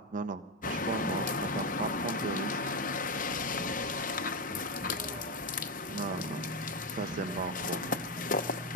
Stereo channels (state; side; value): normal; both; correlation 0.08